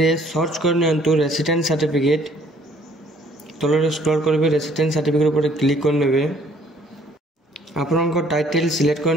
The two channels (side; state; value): both; normal; correlation 0.60